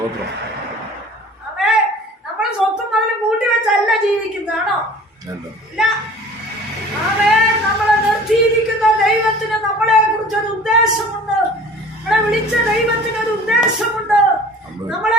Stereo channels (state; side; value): normal; both; correlation 0.45